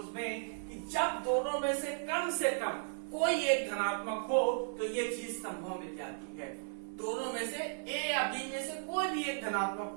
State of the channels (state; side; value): silent; left; digital silence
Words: में कि जब दोनों में से कम कोई एक धनात्मक हो तो ये चीज संभव मिल जाती है। दोनों में से ए या बी में से कोई भी एक धनात्मक